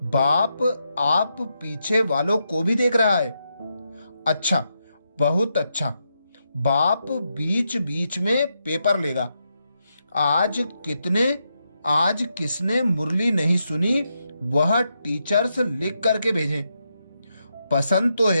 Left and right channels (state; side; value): inverted; both; correlation -0.83